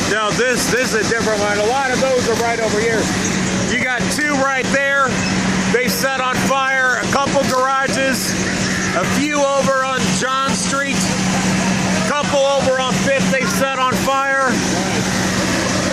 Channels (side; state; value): both; identical; correlation 1.00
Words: No, this is a different one. A lot of those are right over here. You got two right there. They set on fire. A couple garages. A few over on John Street. A couple over on 5th they've set on fire.